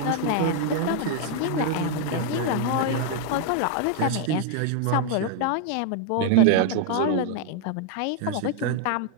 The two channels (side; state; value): both; different; correlation 0.00